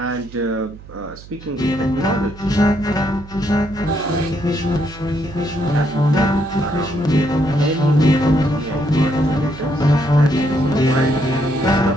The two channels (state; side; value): noise; right; hum, 18 dB below the sound